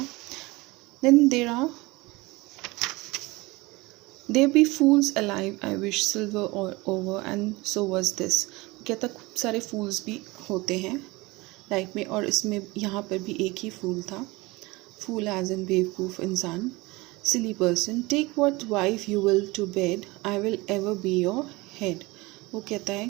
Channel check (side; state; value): left; quieter; 22.6 dB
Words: Then there be fools alive, I wish silver over and so was this. कहता खूब सारे फूल्स भी होते हैं लाइफ में, और इसमें यहाँ पर भी एक ही फूल था। Fool as in बेवकूफ़ इंसान, silly person, take what wife you will to bed, I will ever be your head. वो कहता है